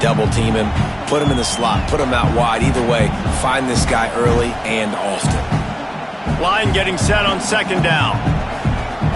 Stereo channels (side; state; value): both; identical; correlation 1.00